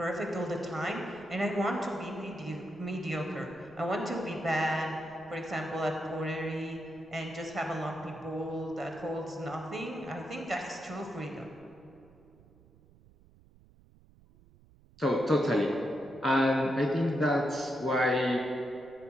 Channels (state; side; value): noise; right; rumble, 27 dB below the sound